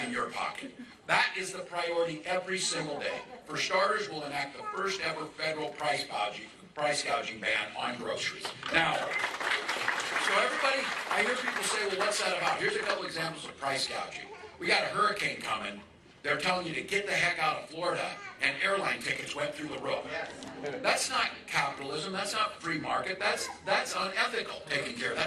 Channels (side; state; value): both; identical; correlation 1.00